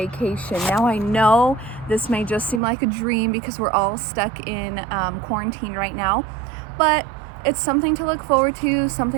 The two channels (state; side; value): drops out; left; at 2.6 s